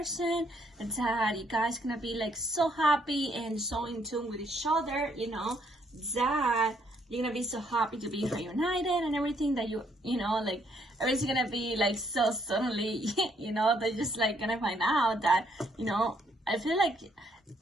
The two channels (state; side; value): normal; both; correlation 0.70